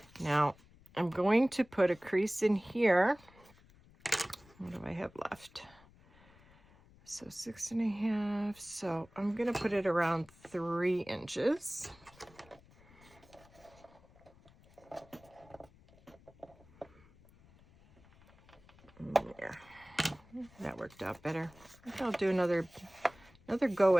Now, I'm going to put a crease in here. What do I have left? So 6.5. So I'm going to put it around 3 inches. Yeah, that worked out better. I think I'll do another go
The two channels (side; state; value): left; noise; rumble, 26 dB below the sound